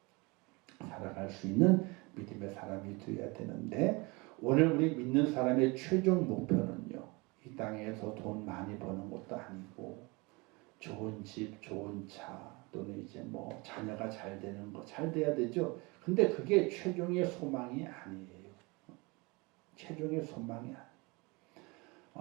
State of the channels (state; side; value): quieter; left; 26.4 dB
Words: 살아갈 수 있는 믿음의 사람이 되어야 되는데 오늘 우리 믿는 사람의 최종 목표는요. 이 땅에서 돈 많이 버는 것도 아니고 좋은 집, 좋은 차 또는 이제 뭐 자녀가 잘 되는 거 잘 돼야 되죠. 근데 그게 최종의 소망이 아니에요. 최종의 소망이